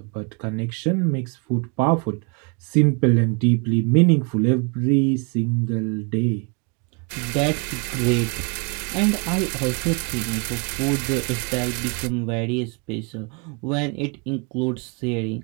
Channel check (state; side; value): quieter; left; 33.5 dB